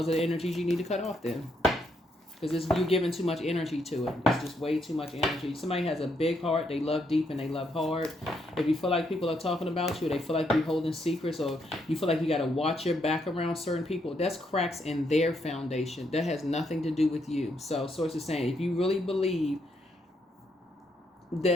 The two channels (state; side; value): normal; both; correlation 0.76